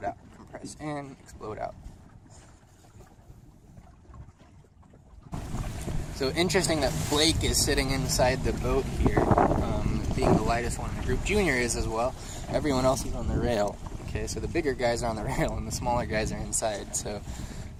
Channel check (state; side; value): identical; both; correlation 1.00